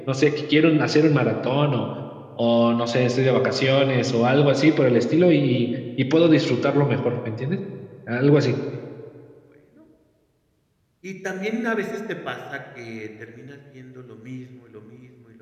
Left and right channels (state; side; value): identical; both; correlation 1.00